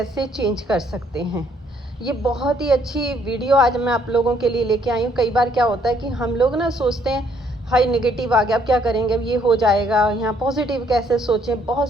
चेंज कर सकते हैं। ये बहुत ही अच्छी वीडियो आज मैं आप लोगों के लिए लेके आई हूँ। कई बार क्या होता है कि हम लोग ना सोचते हैं हाई नेगेटिव आ गया, अब क्या करेंगे, अब ये हो जाएगा, यहाँ पॉजिटिव कैसे सोचें, बहुत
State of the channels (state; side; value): normal; both; correlation 0.67